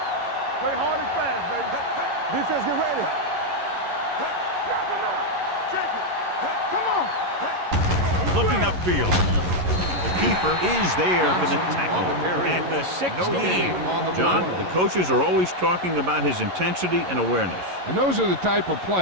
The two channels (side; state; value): left; late; 11 ms